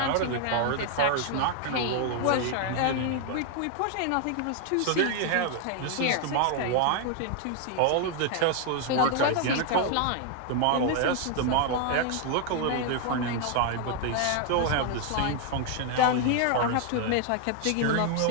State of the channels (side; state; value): both; different; correlation 0.00